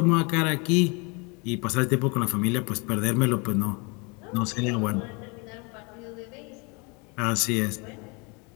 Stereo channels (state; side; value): quieter; right; 30.5 dB